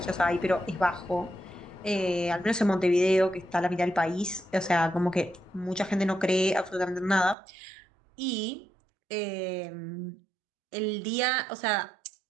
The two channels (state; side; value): drops out; left; at 7.4 s